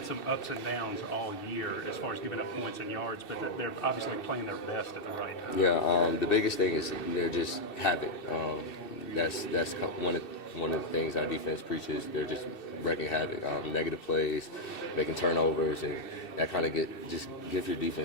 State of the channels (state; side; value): late; right; 2.7 ms